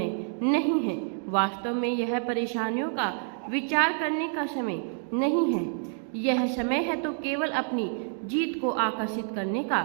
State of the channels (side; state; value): left; silent; 59 dB below the other